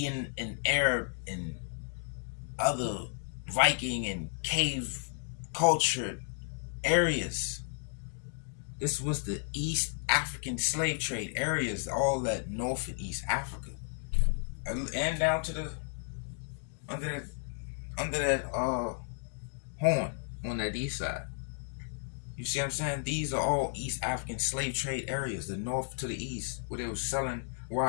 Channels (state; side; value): silent; right; 56 dB below the other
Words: and Arab and other Viking and cave culture areas. This was the East African slave trade areas, all that North and East Africa, and down to the under that horn on that east side. You see what I'm saying? These are all East African slave trade areas, the north to the east, where they were selling